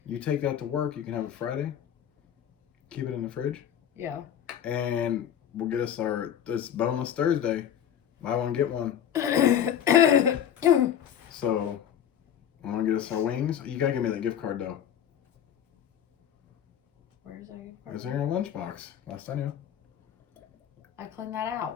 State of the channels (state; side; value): quieter; right; 9.5 dB